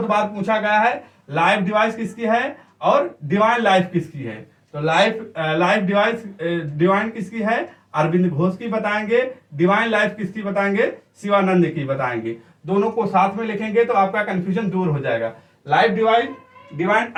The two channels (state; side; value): identical; both; correlation 1.00